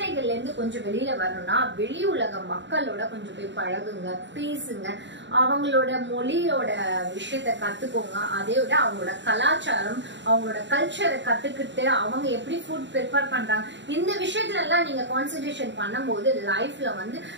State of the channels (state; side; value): late; left; 0.53 ms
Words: இருந்து கொஞ்சம் வெளியில வரணும்னா வெளி உலக மக்களோட கொஞ்சம் போய் பழகுங்க, பேசுங்க, அவங்களோட மொழியோட விஷயத்த கத்துக்கோங்க. அதே விட அவங்களோட கலாச்சாரம், அவங்களோட கல்ச்சரை கத்துக்கிட்டு அவங்க எப்படி ஃபுட் ப்ரிப்பேர் பண்றாங்க, இந்த விஷயத்துல எல்லாம் நீங்க கான்சென்ட்ரேஷன் பண்ணும்போது லைஃப்ல வந்து